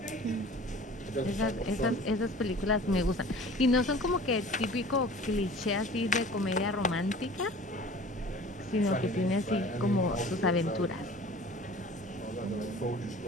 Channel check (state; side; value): normal; both; correlation 0.44